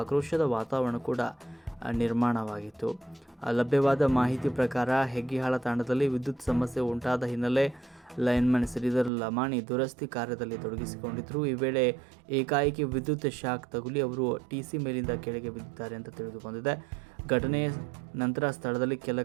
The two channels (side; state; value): left; drops out; at 9.1 s